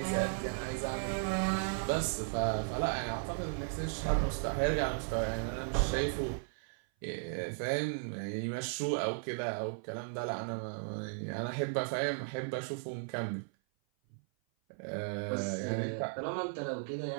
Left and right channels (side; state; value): left; silent; 54 dB below the other